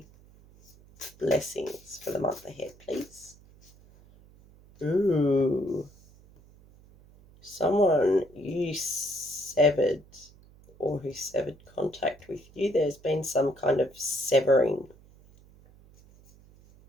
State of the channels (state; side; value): noise; right; hum, 25 dB below the sound